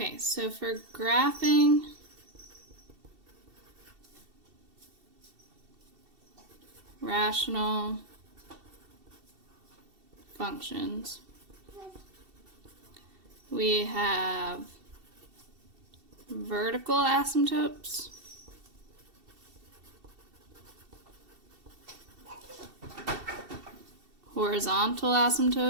so for graphing rational functions, we have vertical asymptotes, horizontal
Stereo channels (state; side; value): late; left; 2.7 ms